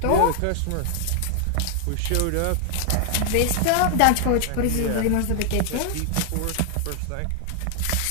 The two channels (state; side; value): different; both; correlation 0.00